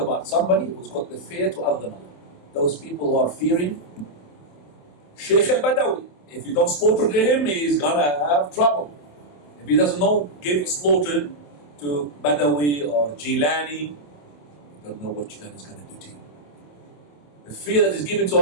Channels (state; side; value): late; right; 27 ms